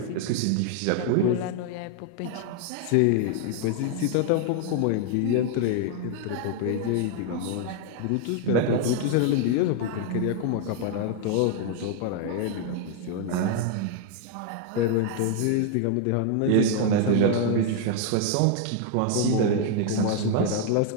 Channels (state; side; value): different; both; correlation 0.00